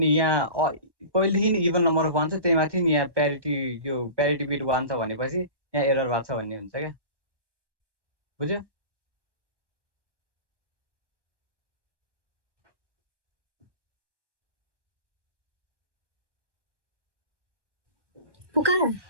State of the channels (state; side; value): late; left; 1.1 ms